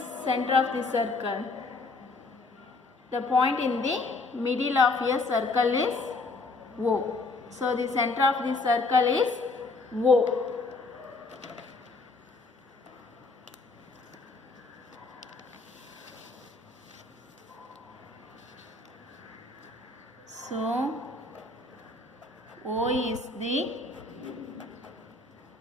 center of the circle? The point in the middle of a circle is O. So the center of the circle is O. So O is the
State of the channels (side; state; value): right; quieter; 3.5 dB